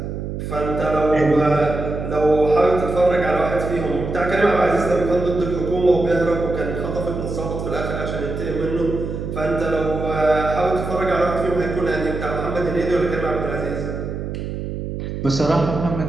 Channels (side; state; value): right; noise; hum, 5 dB below the sound